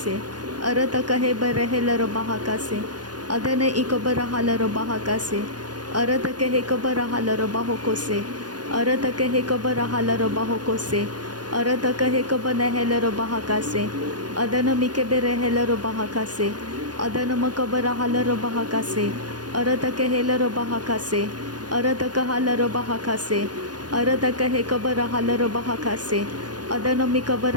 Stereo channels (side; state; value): left; late; 0.70 ms